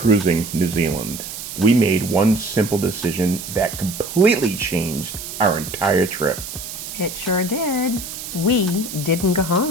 New Zealand, we made one simple decision that completely changed our entire trip. It sure did. We didn't go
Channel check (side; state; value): right; noise; hiss, 9 dB below the sound